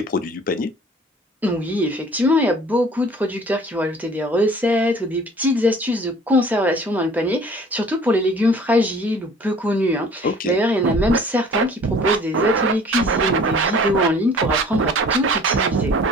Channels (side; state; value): both; normal; correlation 0.50